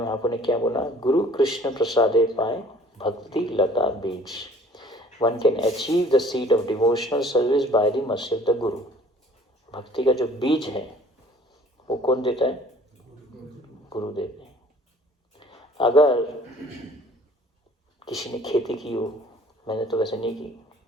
ने क्या बोला, गुरु कृष्ण प्रसादे पाए भक्ति लता बीज, one can achieve the seed of devotional service by the mercy of the गुरु। भक्ति का जो बीज है वो कौन देता है, गुरु देते हैं। अगर किसी ने खेती की हो, मैंने तो वैसे नहीं की,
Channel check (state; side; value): normal; both; correlation 0.52